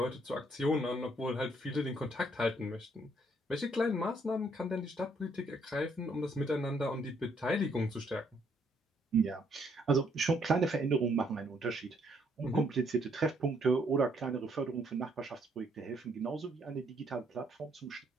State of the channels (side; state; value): both; normal; correlation 0.69